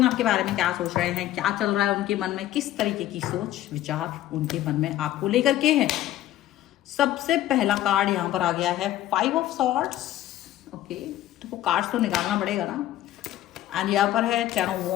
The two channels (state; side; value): quieter; right; 13.7 dB